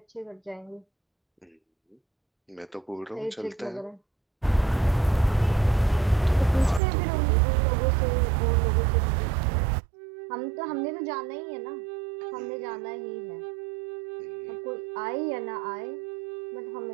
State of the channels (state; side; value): drops out; left; at 6.8 s